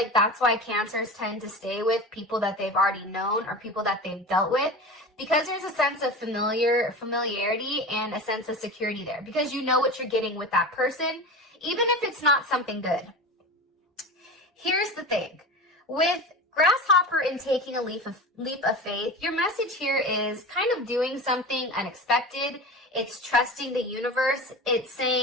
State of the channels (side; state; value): both; normal; correlation 0.30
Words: that's why Cancers tend to stay with people that they've already known or people that they've dealt with, because there's a sense of familiarity and a sense of security there, because you know what you're getting with that person, even if it's not something good. Here's the thing. With grasshopper and taking a leap of faith, your message here is kind of doing something unexpected. It's trusting the universe. It's